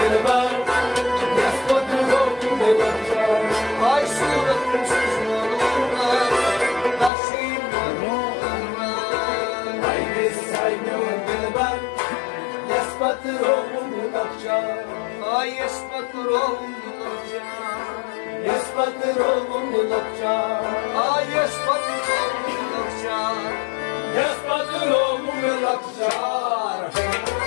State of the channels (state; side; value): drops out; right; at 7.1 s